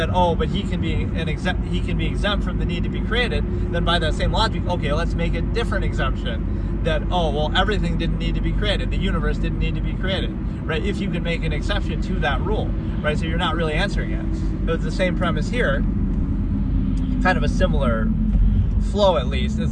oh, but he can be exempt from the need to be created, then by that same logic, okay, let's make a different exemption, that, oh, well, everything didn't need to be created, the universe didn't need to be created, right? If you can make an exception to that rule, right? So you're not really answering it. So it's the same premise here, kind of a similar flow at least, is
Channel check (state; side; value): identical; both; correlation 1.00